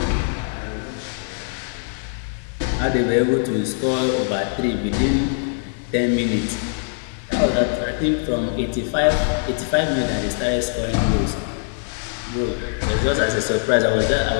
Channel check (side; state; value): right; silent; digital silence